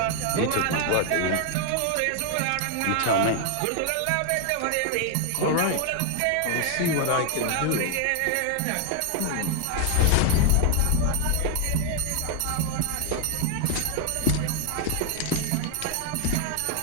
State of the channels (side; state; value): both; different; correlation 0.00